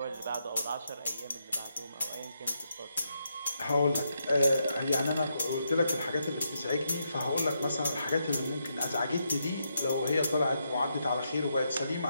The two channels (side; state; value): both; inverted; correlation -0.81